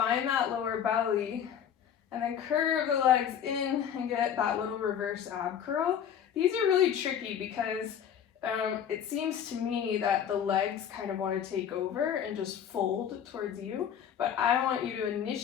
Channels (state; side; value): quieter; right; 8.8 dB